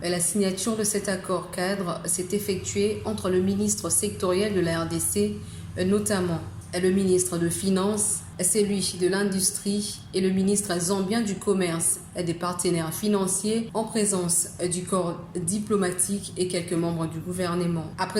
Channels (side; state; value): both; identical; correlation 1.00